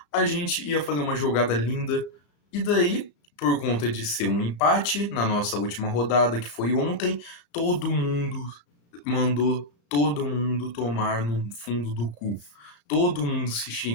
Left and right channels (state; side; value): late; right; 35 ms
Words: a gente ia fazer uma jogada linda. E daí, por conta de ser um empate na nossa última rodada, que foi ontem, todo mundo mandou todo mundo tomar no fundo do cu. Todo mundo se